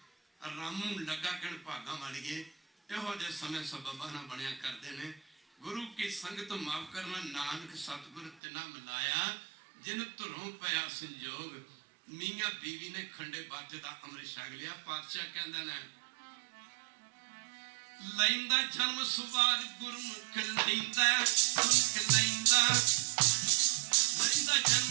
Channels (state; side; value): drops out; left; at 8.4 s